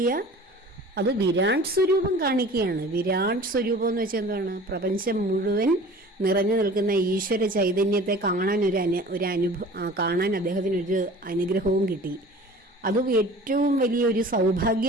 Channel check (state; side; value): normal; both; correlation 0.43